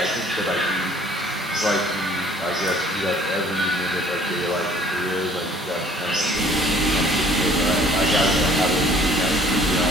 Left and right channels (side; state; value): both; normal; correlation 0.55